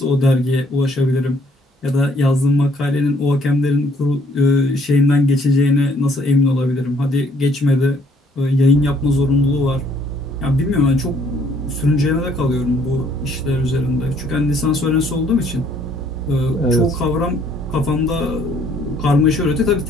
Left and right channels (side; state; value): both; normal; correlation 0.63